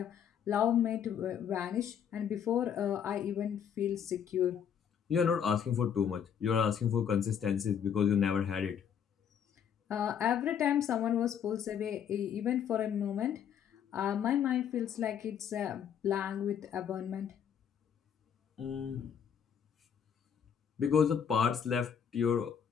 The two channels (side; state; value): right; quieter; 8.2 dB